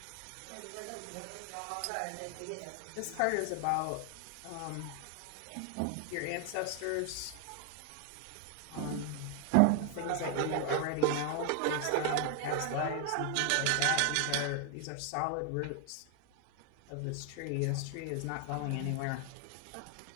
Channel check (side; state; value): both; different; correlation 0.00